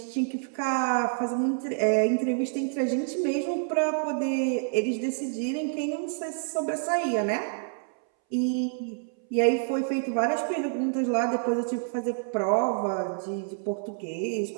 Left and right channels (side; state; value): left; silent; 59 dB below the other